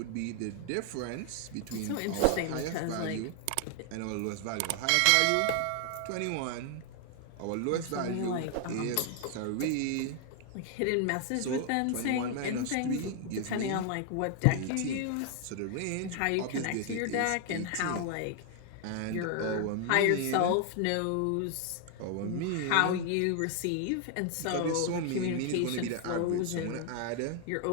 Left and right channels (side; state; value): both; different; correlation 0.00